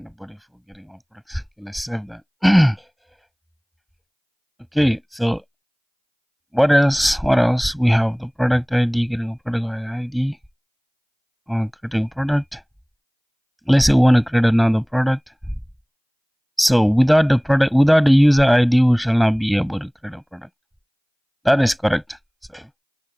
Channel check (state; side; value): identical; both; correlation 1.00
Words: the body for getting all products. Okay, let's save that. Okay, so what else? We have the product ID, getting a product ID, creating product. Let's say we want to create another product. So without the user ID, we shall not be able to create a product. That is correct. So